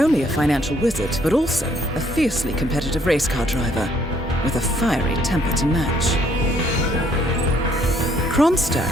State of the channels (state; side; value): normal; both; correlation 0.65